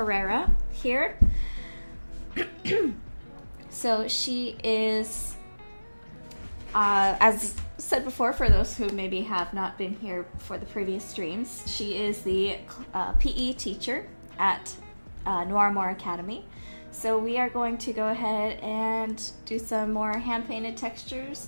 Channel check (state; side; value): inverted; both; correlation -1.00